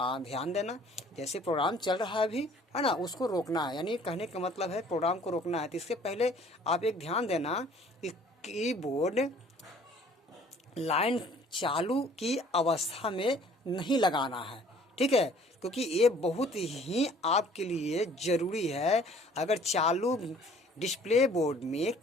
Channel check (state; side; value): normal; both; correlation 0.55